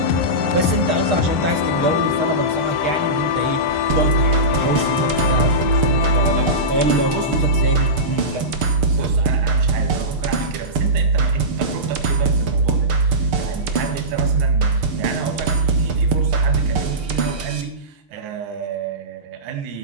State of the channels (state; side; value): late; left; 6.7 ms